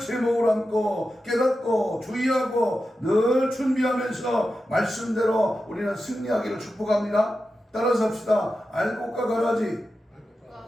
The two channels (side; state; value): both; normal; correlation 0.91